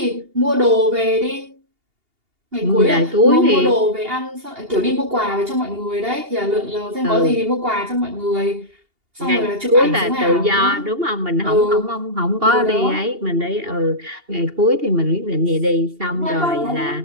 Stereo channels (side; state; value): left; late; 2.8 ms